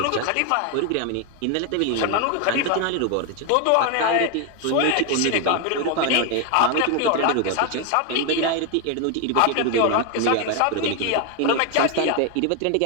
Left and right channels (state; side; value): different; both; correlation 0.01